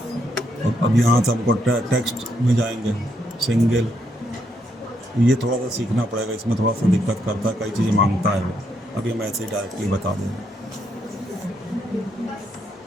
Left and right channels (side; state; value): both; normal; correlation 0.76